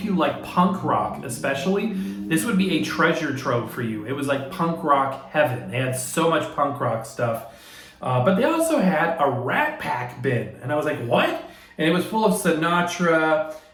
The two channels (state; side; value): identical; both; correlation 1.00